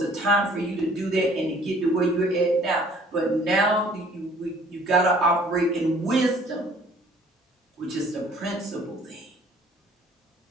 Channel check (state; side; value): normal; both; correlation 0.55